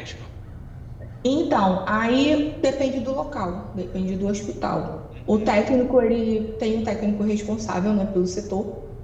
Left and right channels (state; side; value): identical; both; correlation 1.00